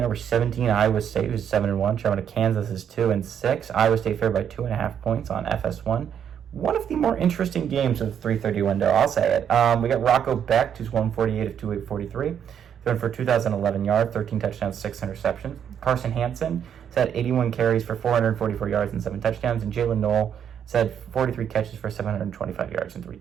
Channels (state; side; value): quieter; left; 8.6 dB